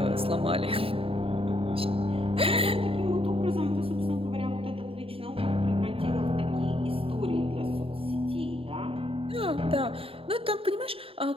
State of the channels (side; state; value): left; late; 0.27 ms